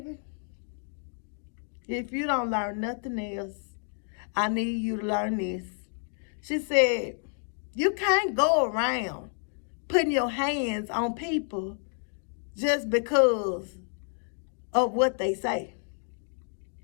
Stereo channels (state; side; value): silent; right; 55 dB below the other